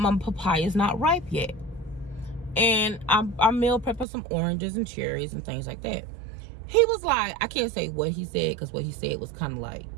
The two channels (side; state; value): left; drops out; at 4.0 s